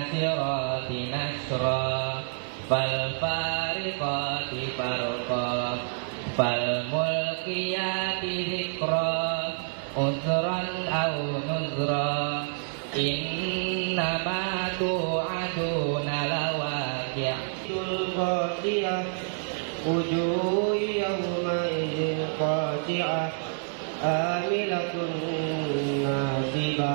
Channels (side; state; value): left; silent; 59 dB below the other